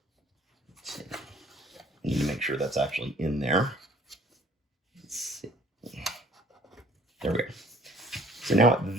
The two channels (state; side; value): normal; both; correlation 0.55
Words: Let's see. I need to make sure that's actually in there. Let's see. There we go. So now at